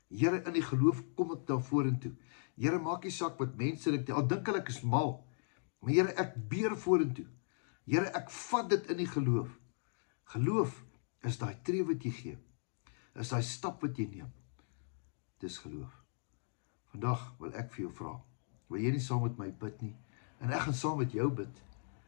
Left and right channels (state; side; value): silent; right; digital silence